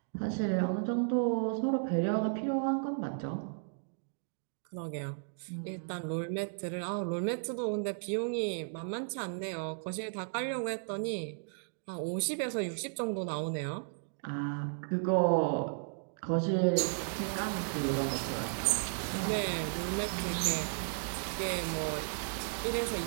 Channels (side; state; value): left; silent; digital silence